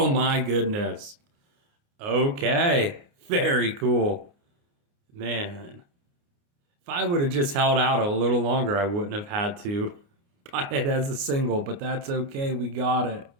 my goodness. Okay, very cool. Man. If I would have just held out a little longer, I wouldn't have had to buy it as a single, but that's okay. We got it.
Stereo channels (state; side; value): late; left; 29 ms